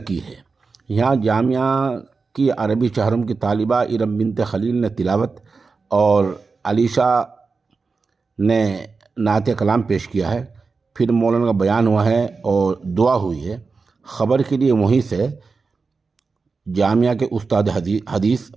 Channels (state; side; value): quieter; left; 4.5 dB